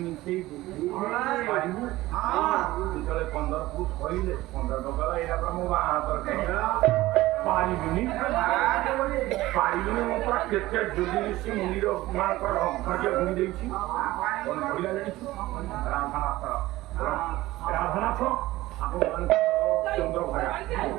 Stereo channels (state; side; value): quieter; left; 17.5 dB